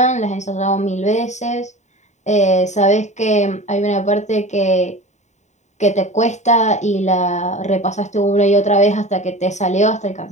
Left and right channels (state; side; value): late; right; 0.34 ms